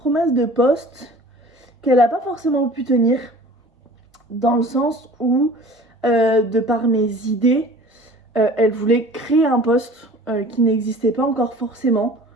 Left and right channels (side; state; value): both; normal; correlation 0.45